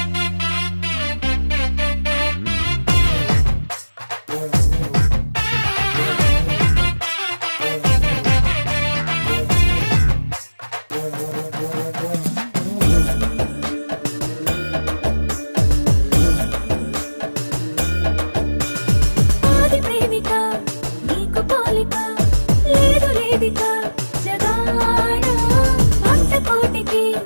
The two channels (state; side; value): inverted; both; correlation -1.00